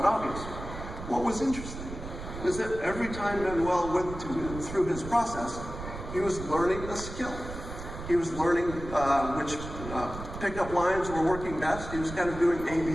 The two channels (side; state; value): right; noise; rumble, 10 dB below the sound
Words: obvious. What was interesting is that every time Manuel went through his process, he was learning a skill. He was learning which pickup lines were working best. He was kind of doing